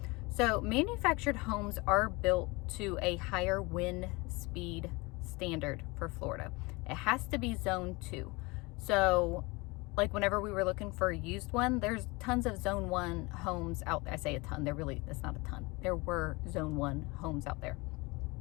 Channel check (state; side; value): quieter; right; 25.1 dB